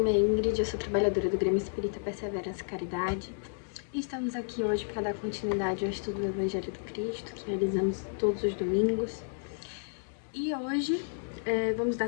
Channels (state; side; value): silent; right; digital silence